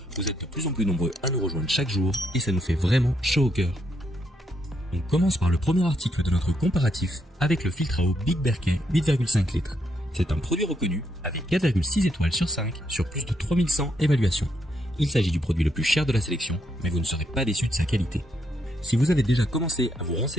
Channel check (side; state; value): both; normal; correlation 0.77